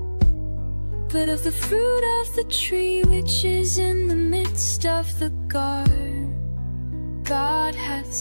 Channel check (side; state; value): both; inverted; correlation -1.00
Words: but of the fruit of the tree which is in the midst of the garden, God hath